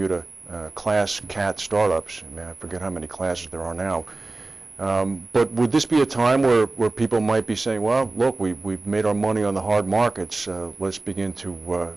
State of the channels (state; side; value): quieter; left; 3.2 dB